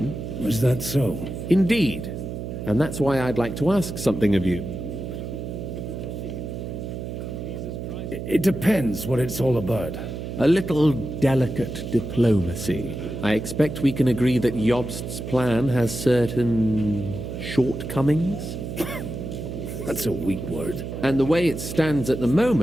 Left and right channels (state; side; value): noise; right; hum, 6 dB below the sound